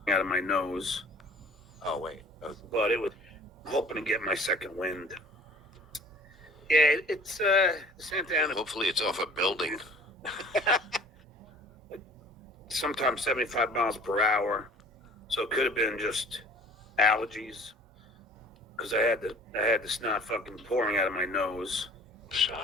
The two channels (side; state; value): both; normal; correlation 0.47